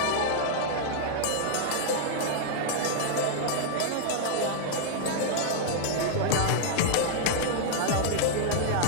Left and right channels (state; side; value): different; both; correlation -0.01